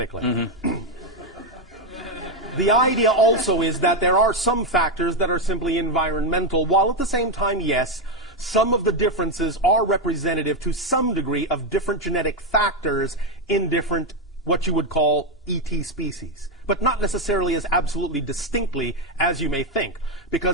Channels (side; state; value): both; normal; correlation 0.06